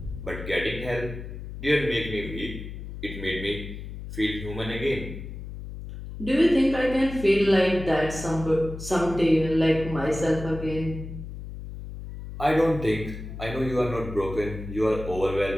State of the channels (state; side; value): noise; left; hum, 10 dB below the sound